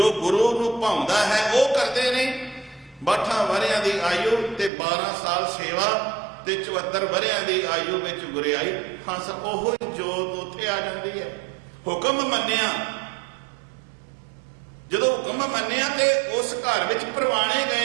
ਗੁਰੂ ਨੂੰ ਭਾਉਂਦਾ ਹੈ ਉਹ ਕਰਦੇ ਨੇ। 62 ਵਰਿਆਂ ਦੀ ਆਯੂ ਤੇ 12 ਸਾਲ ਸੇਵਾ ਤੇ 74 ਵਰਿਆਂ ਦੀ ਆਯੂ ਵਿੱਚ ਗੁਰਿਆਈ। ਹੰਸ ਉਹੋ ਹੀ ਜੋਤ ਉੱਥੇ ਆ ਜਾਂਦੀ ਹੈ। ਹੁਕਮ ਮੰਨਿਆ, ਜਦੋਂ ਹੁਕਮ ਮੰਨਿਆ ਤੇ ਉਸ ਘਰ ਵਿੱਚ ਪ੍ਰਵਾਣੇ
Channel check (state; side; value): drops out; left; at 4.7 s